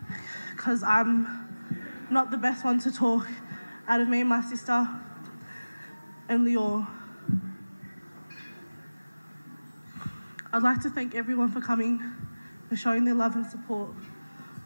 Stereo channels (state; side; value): inverted; both; correlation -1.00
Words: because I'm not the best one to talk out of me and my sister and Lior. I'd like to thank everyone for coming, for showing their love and support.